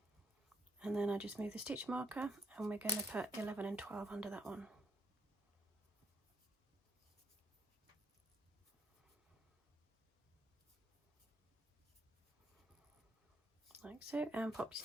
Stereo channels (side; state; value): both; normal; correlation 0.73